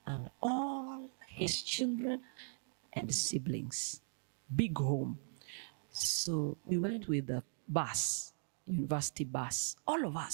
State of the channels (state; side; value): silent; left; digital silence